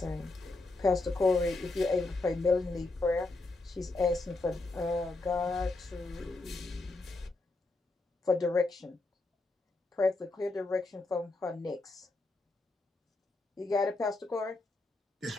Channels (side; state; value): right; quieter; 3.2 dB